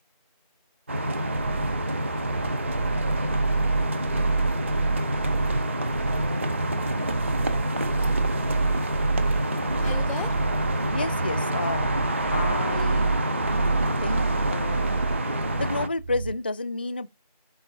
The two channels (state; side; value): inverted; both; correlation -0.80